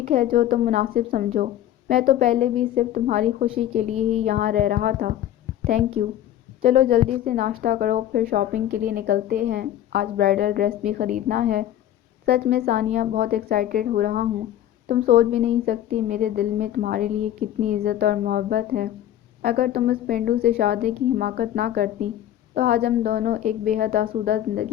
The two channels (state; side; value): quieter; right; 12.0 dB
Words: ہے، جو تم مناسب سمجھو۔ میں تو پہلے بھی صرف تمہاری خوشی کے لیے ہی یہاں رہ رہا تھا۔ Thank you. چلو جلدی سے ناشتہ کرو پھر شاپنگ کے لیے نکلتے ہیں، آج برائڈل ڈریس بھی خریدنا ہے۔ سچ میں ثانیہ بہت ایکسائٹیڈ ہو رہا ہوں۔ تم سوچ بھی نہیں سکتی میرے دل میں تمہارے لیے کتنی عزت اور محبت ہے۔ اگر تم اس پینڈو سے شادی کی حماقت نہ کرتی تو آج ہم دونوں ایک بے حد آسودہ